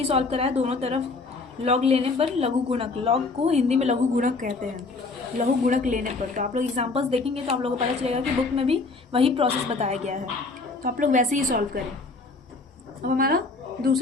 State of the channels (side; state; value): right; quieter; 3.8 dB